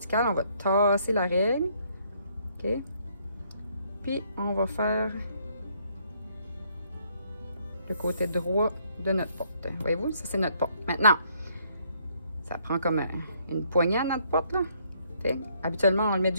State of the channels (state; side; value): inverted; both; correlation -0.68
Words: on va tasser la règle. OK? Puis, on va faire le côté droit de notre porte. Voyez-vous? Ça, c'est notre porte. Maintenant, ça prend comme une poignée à notre porte, là. OK? Habituellement, on le met